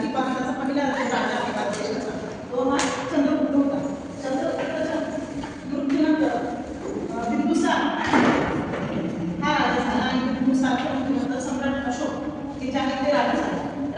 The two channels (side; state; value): both; identical; correlation 1.00